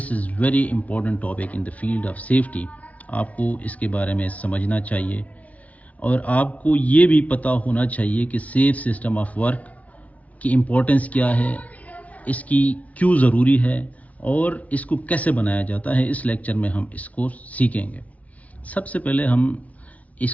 is very important topic in the field of safety. آپ کو اس کے بارے میں سمجھنا چاہیے اور آپ کو یہ بھی پتہ ہونا چاہیے کہ سیف سسٹم آف ورک کی امپورٹنس کیا ہے، اس کی کیوں ضروری ہے اور اس کو کیسے بنایا جاتا ہے. اس لیکچر میں ہم اس کو سیکھیں گے. سب سے پہلے ہم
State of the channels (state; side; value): late; right; 0.069 ms